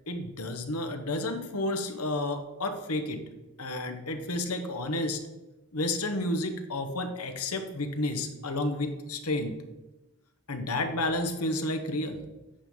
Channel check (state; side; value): normal; both; correlation 0.20